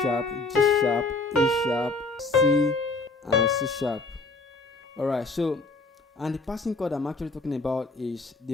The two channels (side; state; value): right; quieter; 3.5 dB